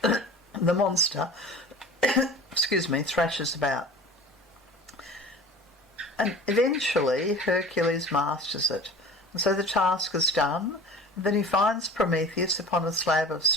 the monster, thrashes about. And eventually Hercules masters it. And so the task is done. And then he finds Prometheus upon a slab of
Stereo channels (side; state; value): both; normal; correlation 0.40